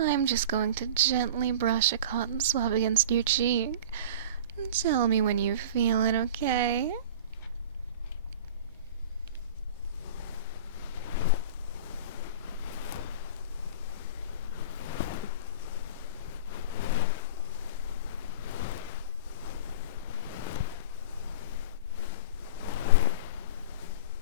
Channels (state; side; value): inverted; both; correlation -0.34